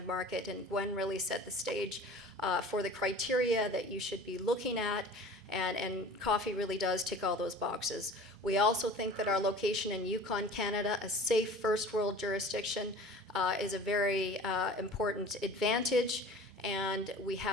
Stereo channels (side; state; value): both; normal; correlation 0.42